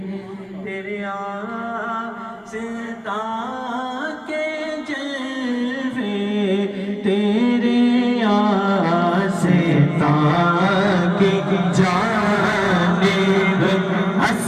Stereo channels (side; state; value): both; identical; correlation 1.00